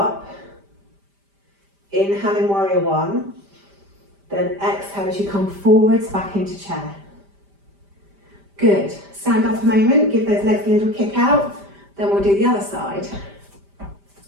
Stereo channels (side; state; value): left; late; 5.0 ms